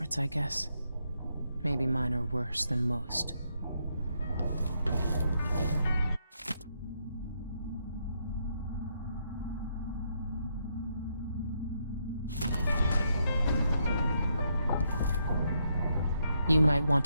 I guess. Maybe mine are worse than most. You might want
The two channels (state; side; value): inverted; both; correlation -0.77